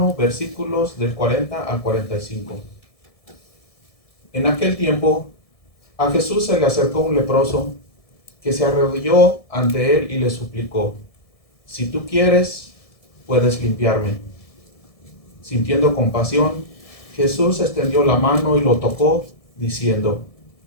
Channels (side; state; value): right; late; 1.7 ms